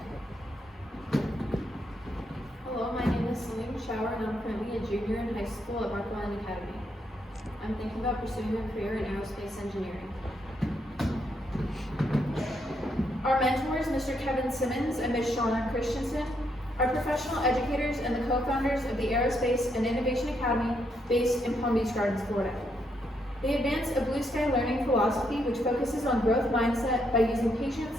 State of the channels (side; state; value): both; normal; correlation 0.77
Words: Hello, my name is Celine Schauer, and I'm currently a junior in high school at Marquand Academy. I'm thinking about pursuing a career in aerospace engineering. Our mentors, Mr. Kevin Simmons and Ms. Shauna Christensen, are professional educators and the co-founders of the Aerospace and Innovation Academy based in Palm Beach Gardens, Florida. They advance a blue sky learning philosophy which focuses on growth mindset by using